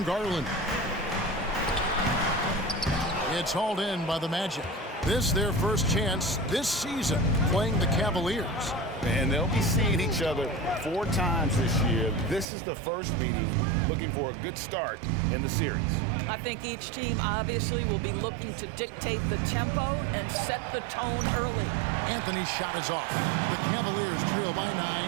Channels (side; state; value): left; drops out; at 12.5 s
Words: Garland. It's hauled in by the Magic. This their first chance this season playing the Cavaliers. And they'll be seeing each other 4 times this year. This is the first meeting, looking for a good start in the series. I think each team obviously will be looking to dictate the tempo and set the tone early. Anthony's shot is off. The Cavaliers trail by 9.